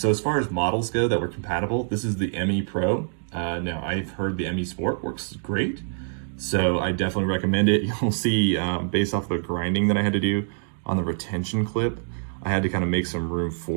as far as models go that were compatible, this is the ME Pro. Now I've heard the ME Sport works great, so I definitely recommend it. You'll see based off the grinding that I had to do on the retention clip, I had to kind of make some room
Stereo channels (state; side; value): silent; left; digital silence